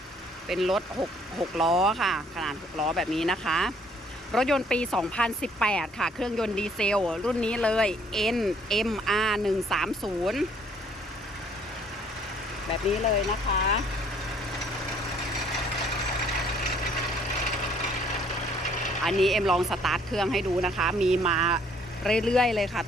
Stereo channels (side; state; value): both; normal; correlation 0.62